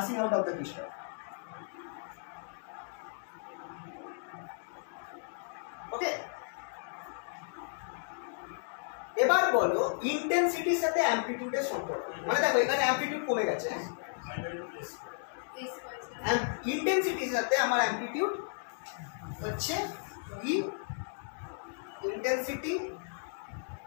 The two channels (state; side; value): silent; right; digital silence